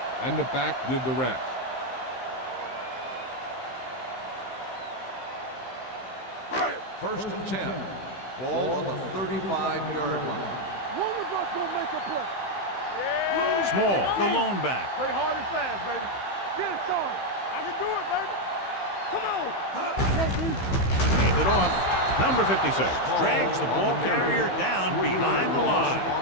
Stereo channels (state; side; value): late; right; 15 ms